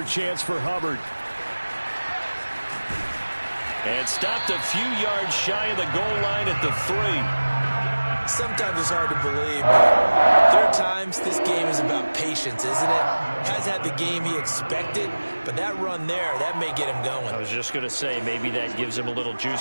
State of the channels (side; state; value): both; inverted; correlation -1.00